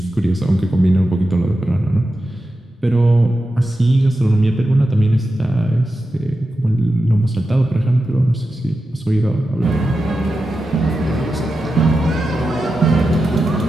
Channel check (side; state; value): both; normal; correlation 0.91